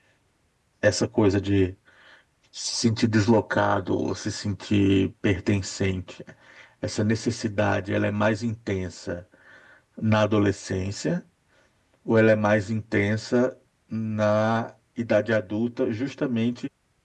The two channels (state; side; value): identical; both; correlation 1.00